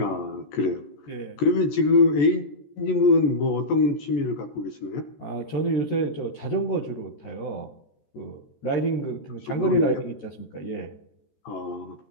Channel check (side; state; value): right; late; 14 ms